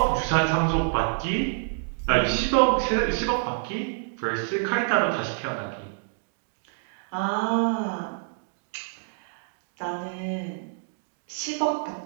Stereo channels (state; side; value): silent; left; digital silence